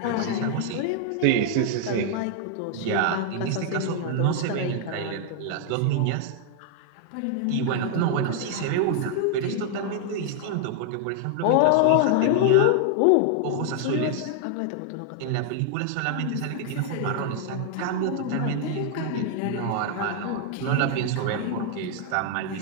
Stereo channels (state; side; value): different; both; correlation 0.00